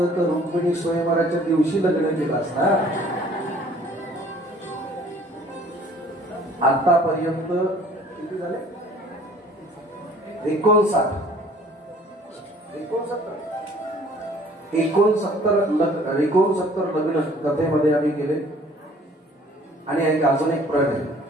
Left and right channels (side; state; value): both; normal; correlation 0.54